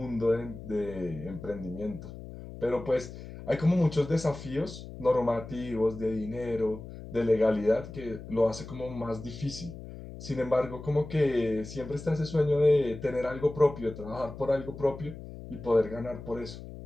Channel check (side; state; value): left; noise; hum, 13 dB below the sound